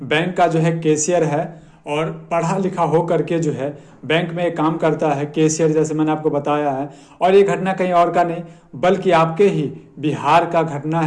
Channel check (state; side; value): identical; both; correlation 1.00